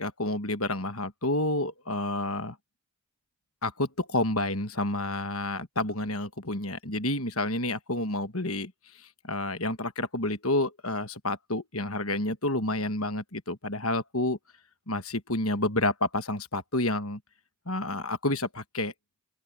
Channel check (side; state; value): both; normal; correlation 0.01